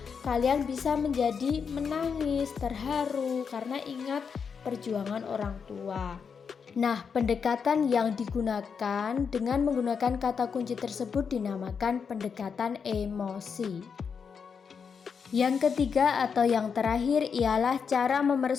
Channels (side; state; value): right; quieter; 6.2 dB